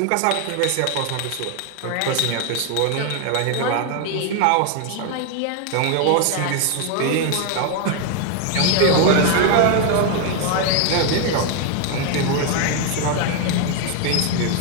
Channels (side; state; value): both; different; correlation 0.01